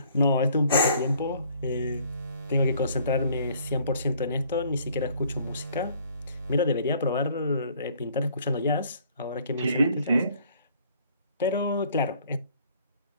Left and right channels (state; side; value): inverted; both; correlation -0.59